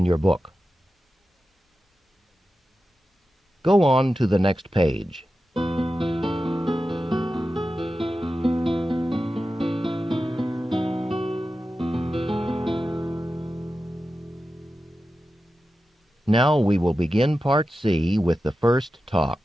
your book. Go on to the next page. Now we will begin Part C with the first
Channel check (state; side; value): normal; both; correlation 0.92